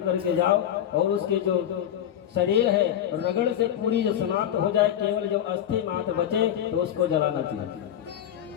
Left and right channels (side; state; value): right; quieter; 10.6 dB